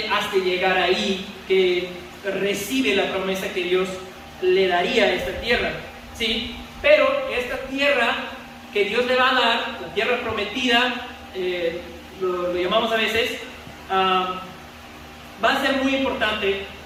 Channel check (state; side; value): identical; both; correlation 1.00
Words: hasta llegar ahí que recibe la promesa que Dios le daría a esta tierra, ¿sí? Pero esta tierra que Dios le va a dar, la tierra prometida, lo llamamos a veces, va a ser muy importante